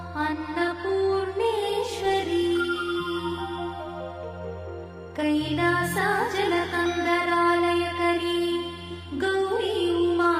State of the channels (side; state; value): both; identical; correlation 1.00